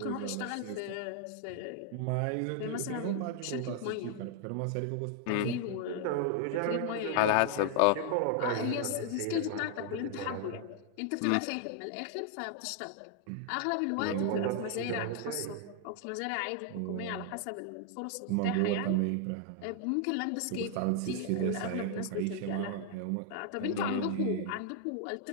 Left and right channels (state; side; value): different; both; correlation 0.00